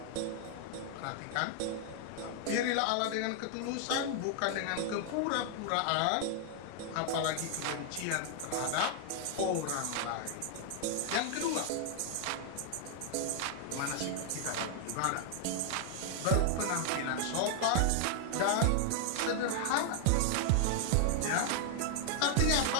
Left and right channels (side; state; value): both; different; correlation 0.00